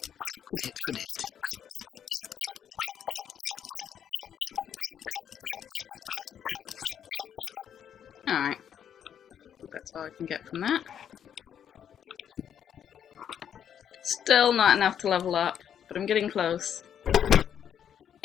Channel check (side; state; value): right; quieter; 8.9 dB